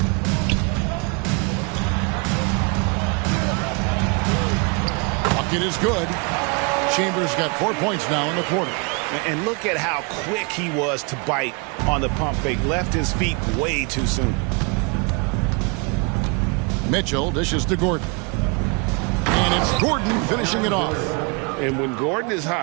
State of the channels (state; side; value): quieter; left; 32.7 dB